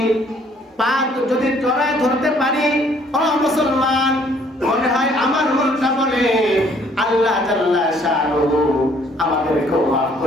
পাক যদি জড়ায় ধরতে পারি, ও মুসলমান, মনে হয় আমার মনটা বলে আল্লাহ জাল্লা শানুহু আমাদেরকে মাফ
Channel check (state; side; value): normal; both; correlation 0.62